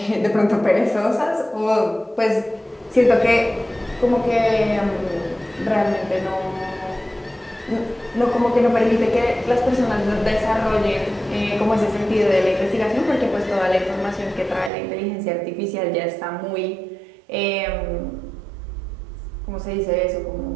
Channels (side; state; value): left; drops out; at 14.7 s